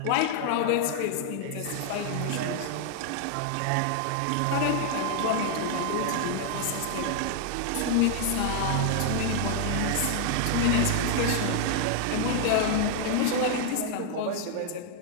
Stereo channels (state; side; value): different; both; correlation 0.00